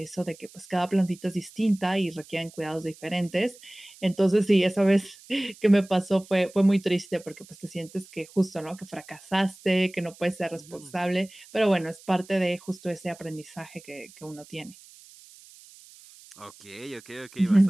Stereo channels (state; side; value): noise; right; hiss, 22 dB below the sound